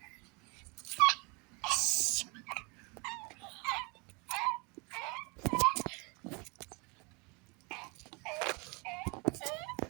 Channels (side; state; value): left; quieter; 30.0 dB